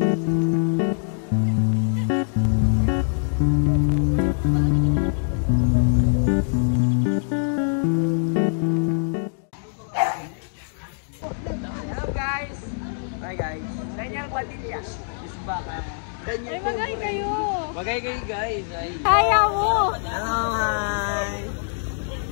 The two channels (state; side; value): silent; right; digital silence